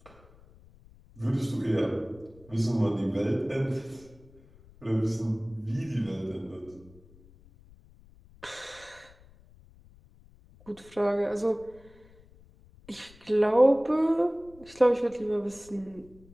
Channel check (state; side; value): noise; left; rumble, 25 dB below the sound